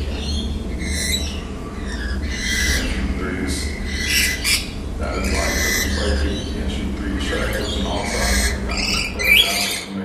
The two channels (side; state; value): both; identical; correlation 1.00